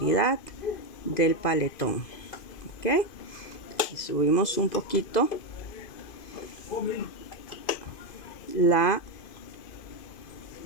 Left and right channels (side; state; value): right; late; 2.5 ms